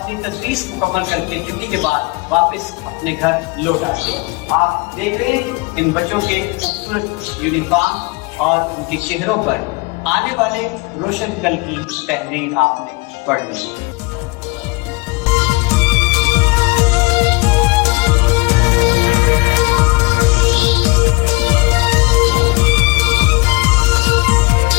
تدریس مکمل کر کے چھٹی کے بعد واپس اپنے گھر لوٹ آتے ہیں۔ آپ دیکھ رہے ہیں ان بچوں کے خوبصورت یونیفارم اور ان کے چہروں پر آنے والے روشن کل کی تحریر آپ نے پڑھ لی۔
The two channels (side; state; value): right; quieter; 26.4 dB